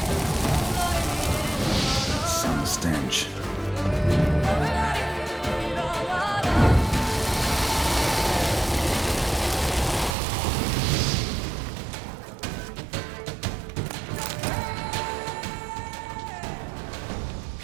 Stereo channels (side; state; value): left; drops out; at 10.2 s